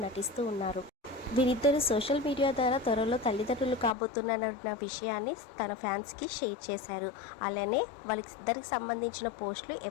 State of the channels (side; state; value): right; drops out; at 3.9 s